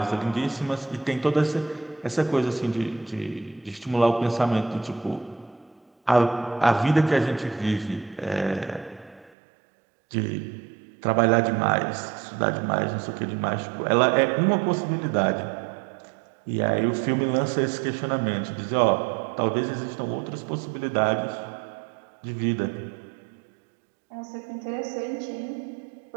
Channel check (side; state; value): left; drops out; at 9.3 s